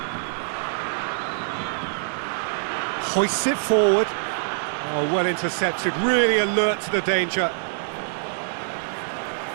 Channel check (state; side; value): silent; left; digital silence